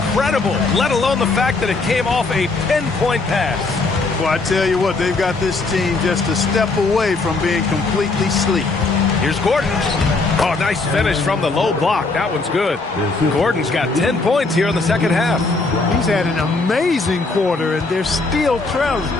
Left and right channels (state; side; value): quieter; right; 3.6 dB